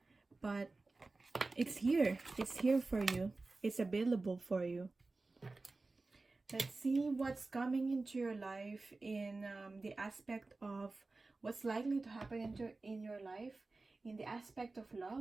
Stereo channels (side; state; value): left; quieter; 3.5 dB